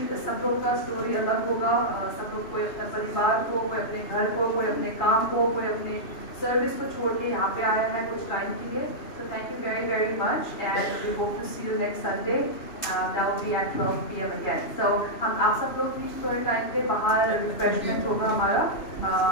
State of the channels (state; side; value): late; right; 2.9 ms